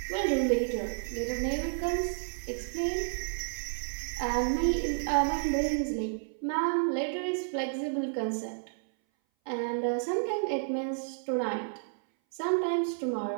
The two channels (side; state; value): left; silent; 57 dB below the other